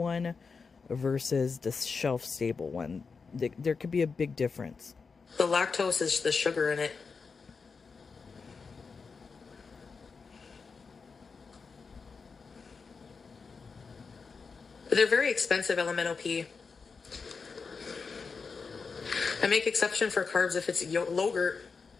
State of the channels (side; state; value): right; quieter; 5.0 dB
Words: versus the shelf-stable one. There could be a big difference. The lactose is the sugar in it. But they're very expensive, LMNOP. I make exception for carbs if it's yogurt.